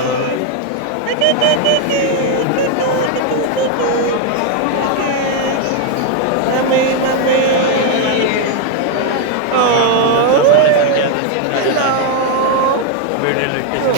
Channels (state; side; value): different; both; correlation 0.01